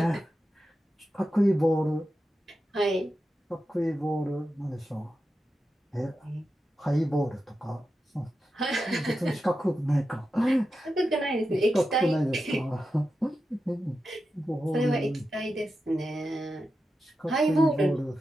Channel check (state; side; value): normal; both; correlation 0.90